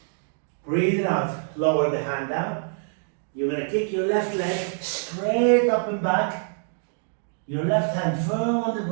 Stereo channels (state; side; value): silent; left; 61 dB below the other